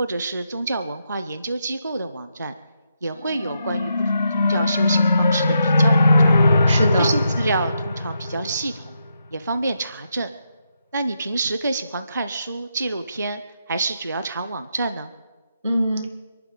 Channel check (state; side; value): inverted; both; correlation -0.81